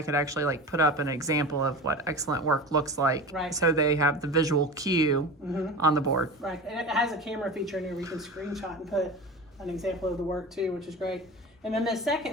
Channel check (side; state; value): both; normal; correlation 0.31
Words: could actually put up an example of what excellent work looks like. Right. So they have the visual cue on the board. Right. And it has a camera feature in here where you can screenshot and put an example of the work too, which is great. And then the